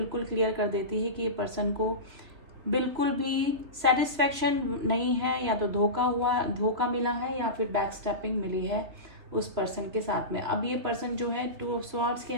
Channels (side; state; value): left; late; 3.0 ms